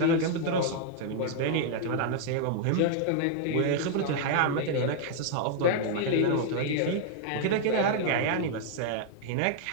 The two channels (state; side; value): different; both; correlation -0.01